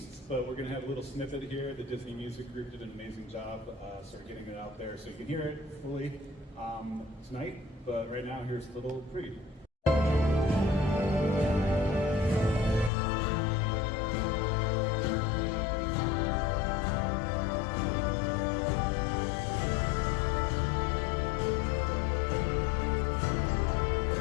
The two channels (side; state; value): right; drops out; at 12.9 s